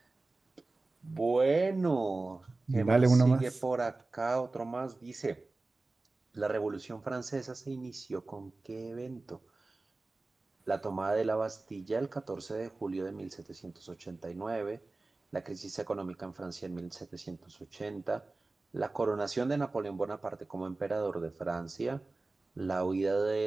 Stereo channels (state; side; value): quieter; left; 3.3 dB